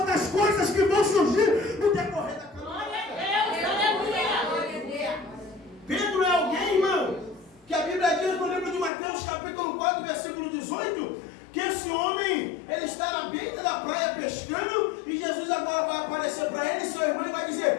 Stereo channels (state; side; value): drops out; right; at 8.9 s